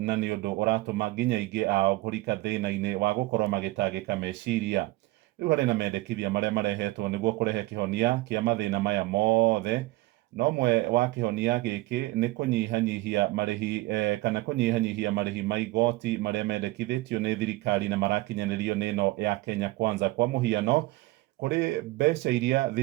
nĩ ũndũ ũratũma nginya aingĩ ao kũrika thĩna-inĩ wa gũkorwo magĩtangĩka meciria. Rĩu harĩ na mendekithia marĩa marehetwo nĩguo kũrehe kĩhonia kĩa mathĩna maya mothe, na ũmwe wa kĩhonia gĩkĩ nĩ kũnyihanyihia marĩhi kana kũnyihanyihia marĩhi ma igoti marĩa mendekithĩtio nĩ thirikari na marakinyanĩrio nĩ ĩno ya Kenya Kwanza. Kwa mũhiano, kũrĩ mbeca iria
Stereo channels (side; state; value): left; quieter; 19.9 dB